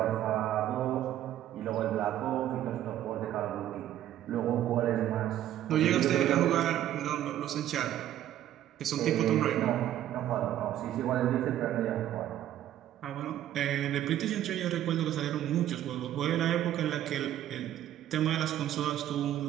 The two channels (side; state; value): left; quieter; 12.2 dB